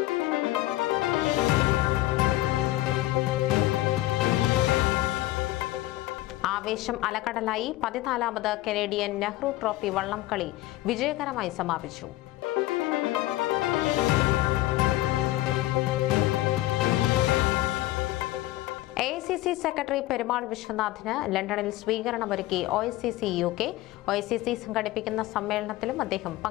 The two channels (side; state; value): right; quieter; 17.2 dB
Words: ആവേശം അലകടലായി 14ാമത് കനേഡിയൻ നെഹ്റു ട്രോഫി വള്ളംകളി വിജയകരമായി സമാപിച്ചു. AICC സെക്രട്ടറി പെരുമാൾ വിശ്വനാഥിന് ലണ്ടനിൽ സ്വീകരണമൊരുക്കി OICC UK. OICC സംഘടിപ്പിക്കുന്ന സമ്മേളനത്തിലും അദ്ദേഹം